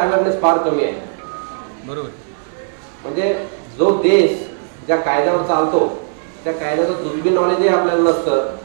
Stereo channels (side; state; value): left; silent; 68 dB below the other